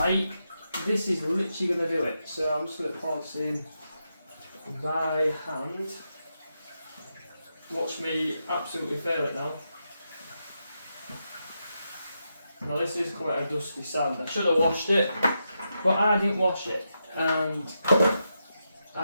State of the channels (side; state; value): both; inverted; correlation -0.86